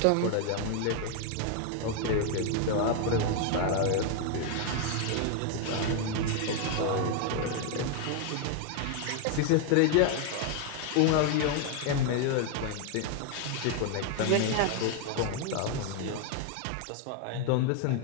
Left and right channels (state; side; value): different; both; correlation 0.01